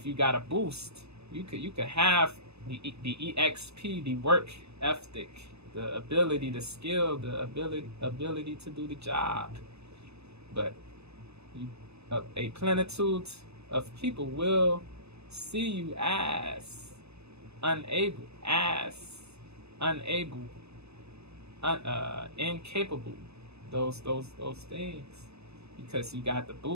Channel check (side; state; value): left; late; 0.79 ms